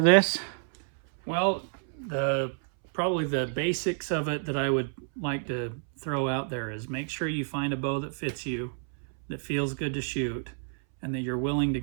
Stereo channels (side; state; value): left; silent; 58 dB below the other